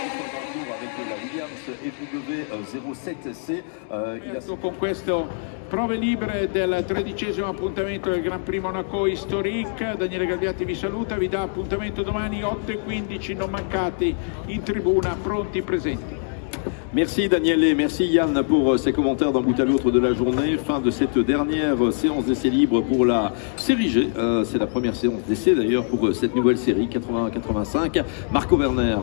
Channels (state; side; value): silent; right; 63 dB below the other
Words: EW07C, con questo prove libere del 13° appuntamento del Gran Prix Monaco Historique. Daniele Galbiati vi saluta, vi dà appuntamento domani 8:15, non mancate in tribuna, pronti, presenti. Merci Daniel et merci Yann pour ces commentaires d'un bout à l'autre de la journée. Fin de cette dernière séance d'essai libre pour la série G. C'est la première séance d'essai d'ailleurs pour cette nouvelle série 80-85. Marco Werner